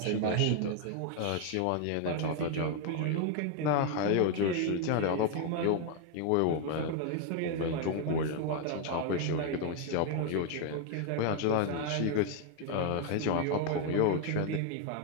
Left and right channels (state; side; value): different; both; correlation 0.01